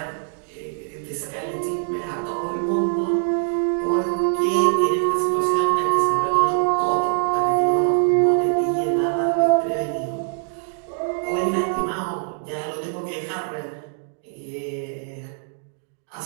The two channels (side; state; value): left; silent; digital silence